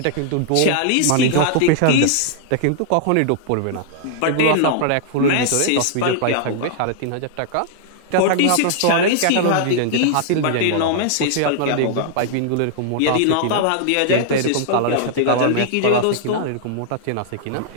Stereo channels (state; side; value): different; both; correlation -0.01